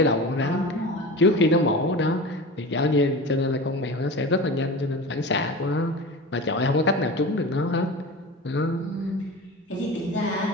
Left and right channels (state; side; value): normal; both; correlation 0.31